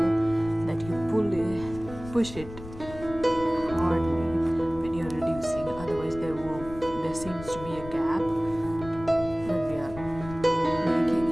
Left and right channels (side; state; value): left; noise; rumble, 14 dB below the sound